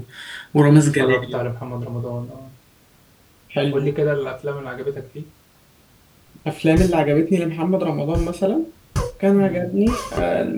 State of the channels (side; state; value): both; identical; correlation 1.00